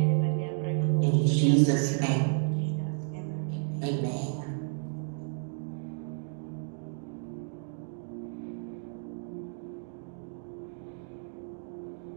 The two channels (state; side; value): silent; left; digital silence